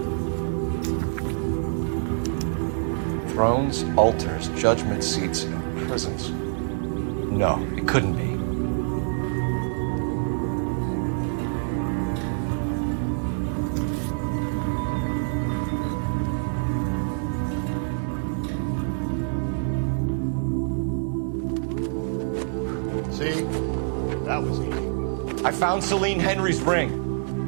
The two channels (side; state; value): left; silent; 61 dB below the other